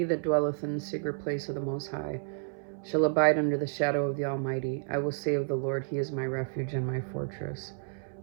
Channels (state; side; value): silent; left; 57 dB below the other